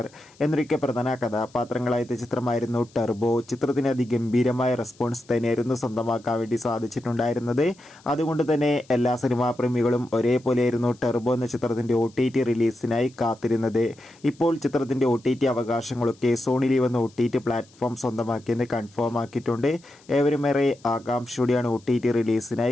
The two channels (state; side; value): noise; left; hiss, 28 dB below the sound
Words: എന്നൊക്കെ പ്രധാന കഥാപാത്രങ്ങളായ ചിത്രമായിരുന്നു ടെർബോ. ചിത്രത്തിന് അതിഗംഭീരമായ റെസ്പോൺസ് തന്നെയായിരുന്നു സ്വന്തമാക്കാൻ വേണ്ടി സാധിച്ചിട്ടുണ്ടായിരുന്നത്. അതുകൊണ്ട് തന്നെ എല്ലാ സിനിമാ പ്രേമികളും ഒരേപോലെയായിരുന്നു ടെർബോ എന്ന ചിത്രത്തിൻ്റെ OTT റിലീസിനായി കാത്തിരുന്നത്. ഇപ്പോൾ ചിത്രത്തിൻ്റെ OTT അവകാശങ്ങളൊക്കെ സോണി ലീവ് എന്ന OTT പ്ലാറ്റ്ഫോം സ്വന്തമാക്കിയെന്ന് കൺഫേം ആക്കിയിട്ടുണ്ട്. ഏവരുമേറെ ആകാംക്ഷയോടെയാണ് OTT